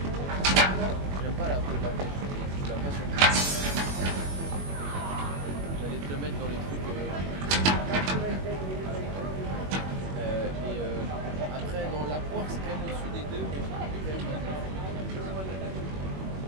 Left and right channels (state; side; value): late; left; 21 ms